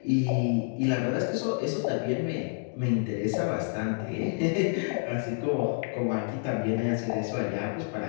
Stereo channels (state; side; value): silent; right; digital silence